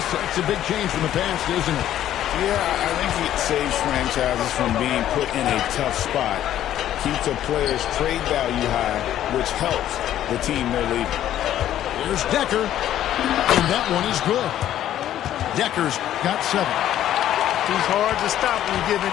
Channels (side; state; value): right; quieter; 11.9 dB